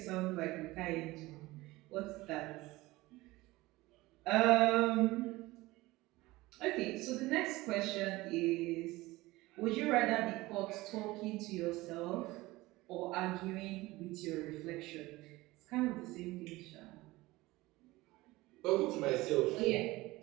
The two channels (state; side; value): quieter; left; 19.7 dB